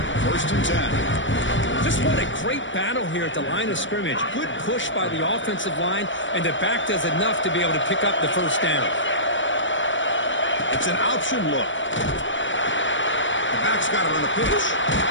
First and 10. Just what a great battle here at the line of scrimmage. Good push by the offensive line, and the back does enough to be able to pick up the first down. It's an option look. The back's got it on the pitch.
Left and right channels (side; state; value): right; late; 0.55 ms